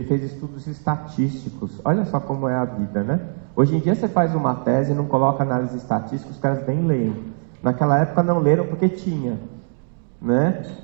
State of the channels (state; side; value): silent; left; digital silence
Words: fez estudos estatísticos. Olha só como é a vida, né? Hoje em dia você faz uma tese e não coloca análise estatística, os caras nem leem. Naquela época não leram porque tinha, né?